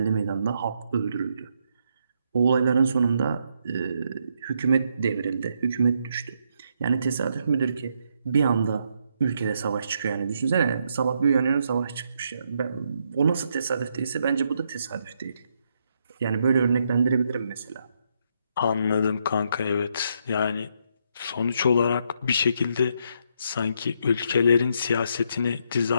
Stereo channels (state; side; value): inverted; both; correlation -0.76